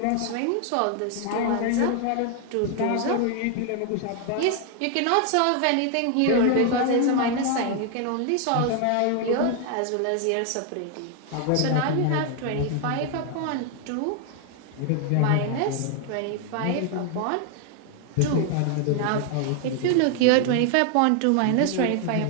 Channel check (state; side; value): different; both; correlation 0.00